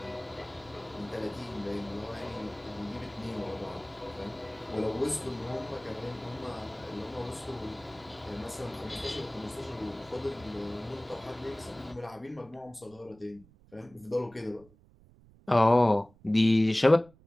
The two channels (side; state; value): right; noise; rumble, 26 dB below the sound